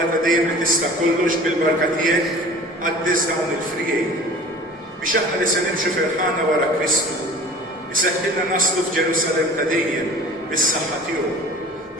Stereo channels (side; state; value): both; normal; correlation 0.44